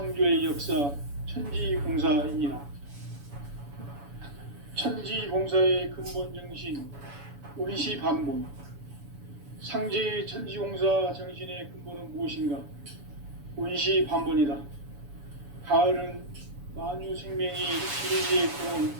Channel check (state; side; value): late; left; 7.0 ms